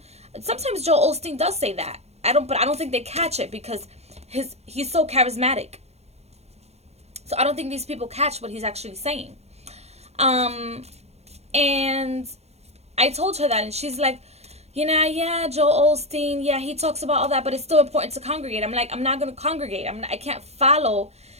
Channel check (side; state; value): left; late; 0.31 ms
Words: sometimes Joel Osteen does say that. But I don't think they catch it because he's so charismatic. So I don't think these people catch what he's actually saying. And I told her that, and she's like, yeah, Joel Osteen, yeah, he talks about all that, but it's still important to congregate. I'm like, I'm not going to congregate. I can't follow